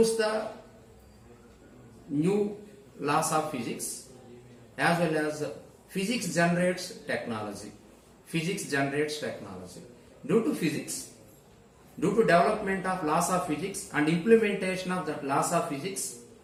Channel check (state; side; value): identical; both; correlation 1.00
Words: the new laws of physics, as well as physics generates technology. Physics generates technology. Due to physics, due to development of laws of physics and implementation of that laws of physics,